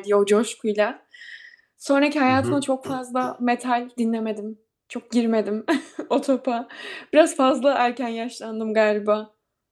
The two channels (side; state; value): both; identical; correlation 1.00